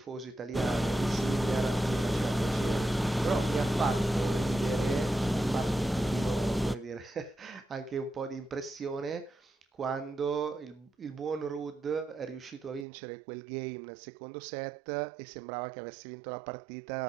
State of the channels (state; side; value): drops out; left; at 12.9 s